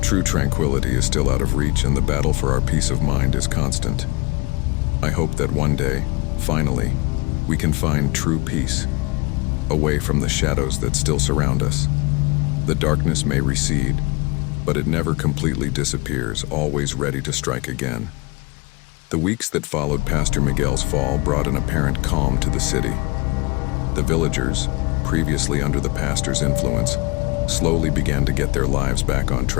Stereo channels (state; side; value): quieter; right; 26.0 dB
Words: True tranquility is still out of reach, and the battle for our peace of mind is constant. I hope that one day, finally, we can find true peace, away from the shadows that still surround us. The darkness may recede, but it never completely disappears, always ready to strike again. The weeks that followed Pastor Miguel's fall brought an apparent calm to the city. The villagers, previously under the pastor's influence, slowly began to get their lives back on